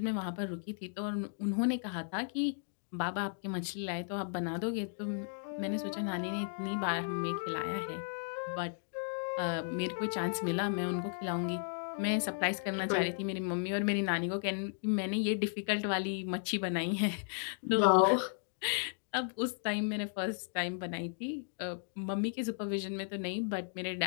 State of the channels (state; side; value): silent; right; digital silence